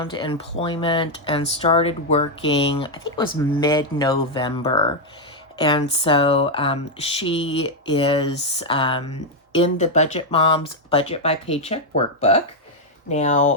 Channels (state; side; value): normal; both; correlation 0.00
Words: employment and started working, I think it was mid-November. And so she is in the Budget Mom's Budget by Paycheck workbook.